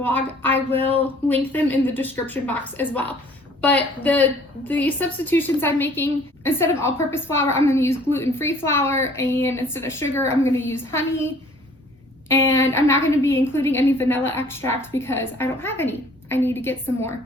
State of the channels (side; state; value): both; normal; correlation 0.55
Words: I will link them in the description box as well. But the substitutions I'm making, instead of all-purpose flour, I'm going to use gluten-free flour, and instead of sugar, I'm going to use honey. And I'm not going to be including any vanilla extract because I don't have any. I need to get some